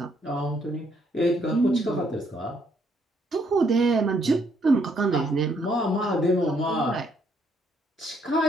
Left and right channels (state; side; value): normal; both; correlation 0.70